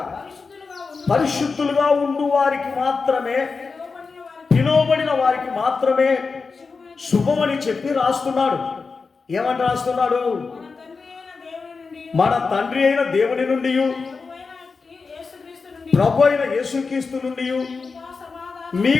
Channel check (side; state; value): right; quieter; 4.6 dB